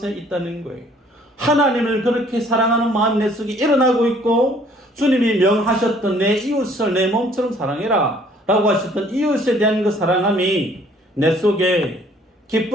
있다는 거예요. 하나님을 그렇게 사랑하는 마음이 내 속에 일어나고 있고, 주님이 명하셨던 내 이웃을 내 몸처럼 사랑해라 라고 하셨던 이웃에 대한 그 사랑함이 내 속에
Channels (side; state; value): both; normal; correlation 0.59